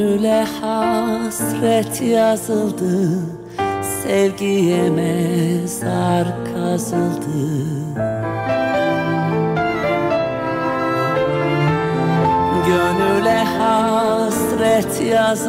hasret yazıldı, sevgiye mezar kazıldı. Gönüle hasret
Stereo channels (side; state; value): both; identical; correlation 1.00